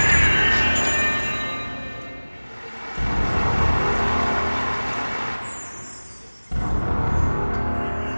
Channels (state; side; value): inverted; both; correlation -1.00